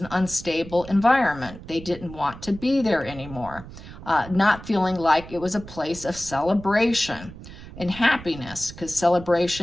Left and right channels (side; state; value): right; noise; rumble, 15 dB below the sound